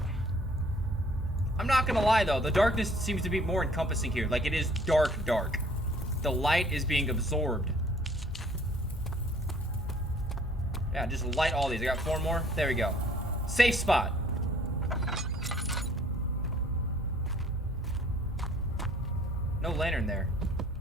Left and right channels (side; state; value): both; normal; correlation 0.57